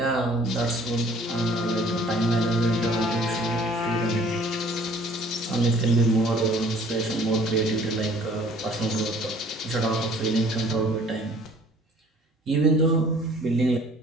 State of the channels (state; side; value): normal; both; correlation 0.54